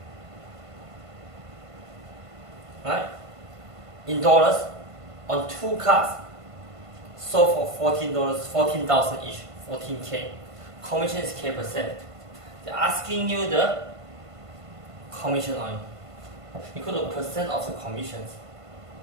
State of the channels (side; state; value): left; late; 1.5 ms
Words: Right? In dollars, on 2 cars, sold for $14, 14,000 each, 14K. Commission is K%. They're asking you the commission on equal to percent of the commissions